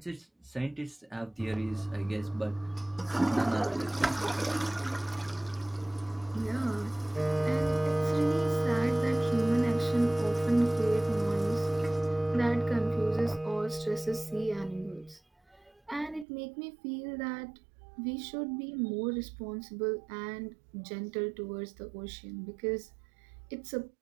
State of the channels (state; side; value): drops out; left; at 16.2 s